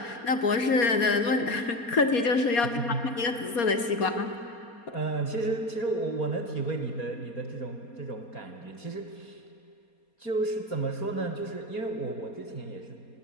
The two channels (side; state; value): right; late; 4.3 ms